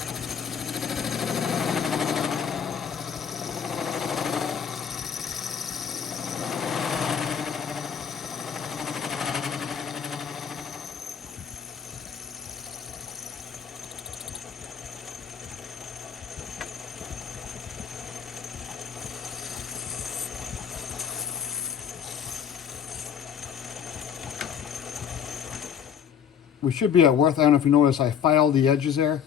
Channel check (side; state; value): right; quieter; 7.9 dB